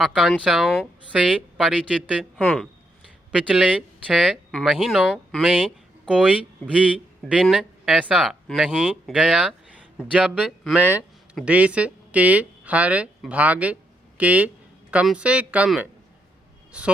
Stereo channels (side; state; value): both; normal; correlation 0.78